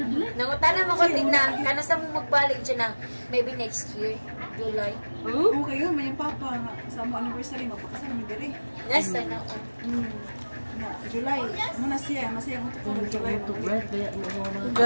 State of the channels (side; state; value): both; inverted; correlation -1.00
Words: Nangutana mo ko din na, kano sa mo magbalik dyan na, maybe next year, July. Okay yun, may yung papa nga. Sa mo anniversary, mapakasal mo diri. Nasa na ako. July, muna siya, masaya mo ito July.